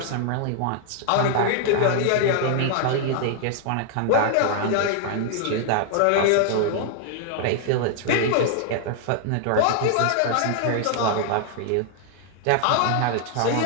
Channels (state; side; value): different; both; correlation 0.00